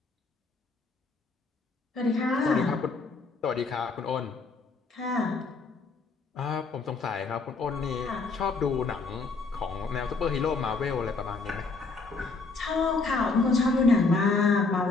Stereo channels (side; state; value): right; quieter; 4.1 dB